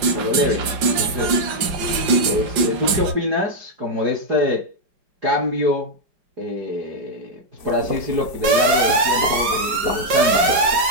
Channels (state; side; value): late; left; 5.0 ms